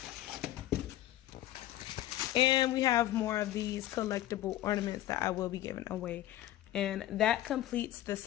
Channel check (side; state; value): right; quieter; 14.3 dB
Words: And we have more of these collectible ornaments that I will be giving away. And that completes the